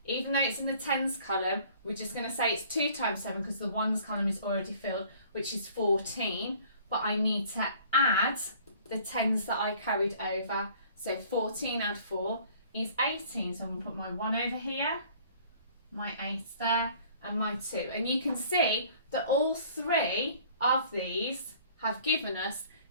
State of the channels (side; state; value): both; inverted; correlation -0.53